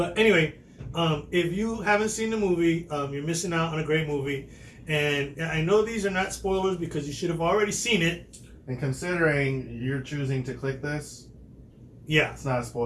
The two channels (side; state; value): both; identical; correlation 1.00